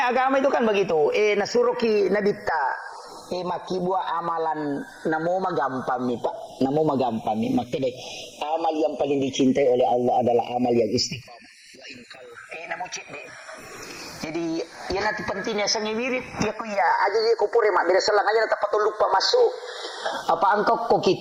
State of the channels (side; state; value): both; identical; correlation 1.00